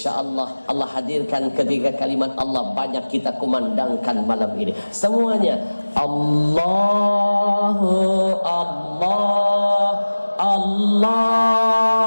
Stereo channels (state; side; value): inverted; both; correlation -1.00